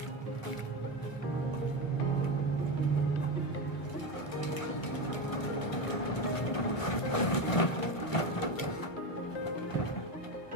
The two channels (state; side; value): late; right; 2.1 ms